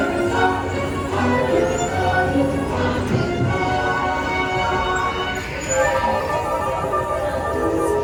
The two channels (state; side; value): identical; both; correlation 1.00